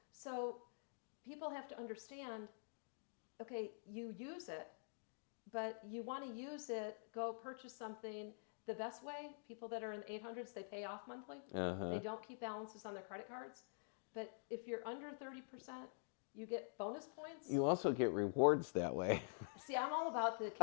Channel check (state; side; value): silent; right; digital silence